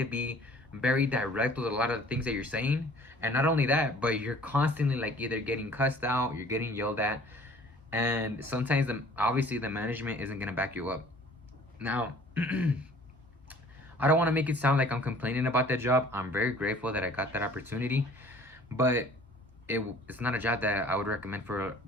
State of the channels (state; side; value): normal; both; correlation 0.51